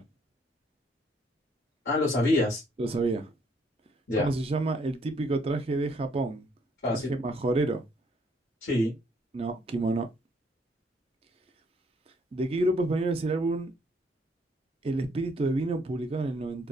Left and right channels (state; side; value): normal; both; correlation 0.67